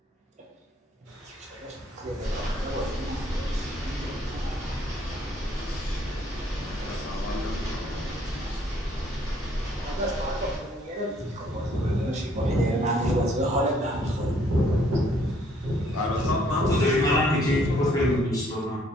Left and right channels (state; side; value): normal; both; correlation 0.64